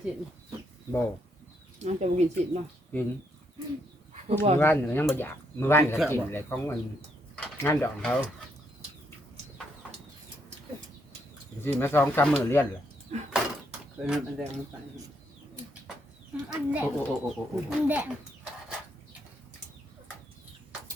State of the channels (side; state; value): both; normal; correlation 0.75